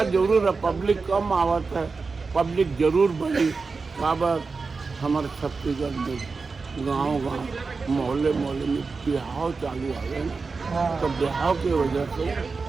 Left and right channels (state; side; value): quieter; left; 4.4 dB